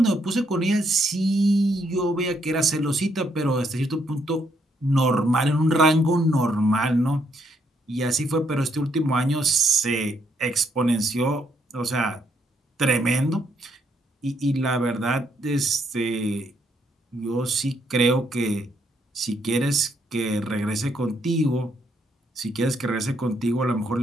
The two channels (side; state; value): both; normal; correlation 0.73